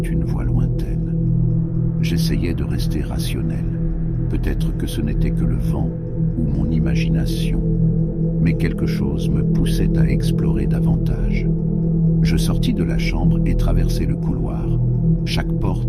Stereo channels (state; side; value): identical; both; correlation 1.00